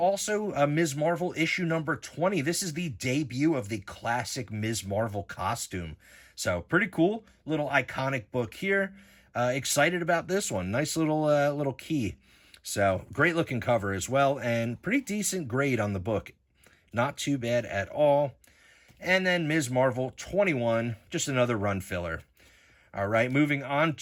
Ms. Marvel issue number 20. This is the debut of the classic Ms. Marvel costume. So pretty cool, little iconic book here. Excited about this one. Nice little key. So great looking cover as well, and pretty decent grade on the book. Not too bad at all. And then Ms. Marvel 21, just another run filler. All right, moving on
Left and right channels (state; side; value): identical; both; correlation 1.00